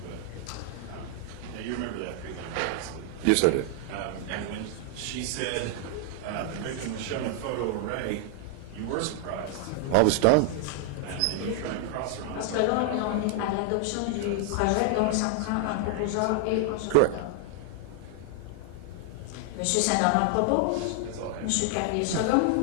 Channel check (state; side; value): different; both; correlation 0.00